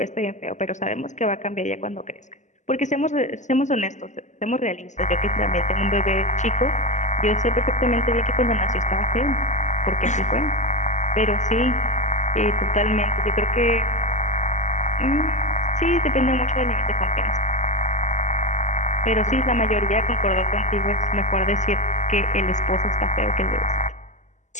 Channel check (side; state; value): right; late; 0.34 ms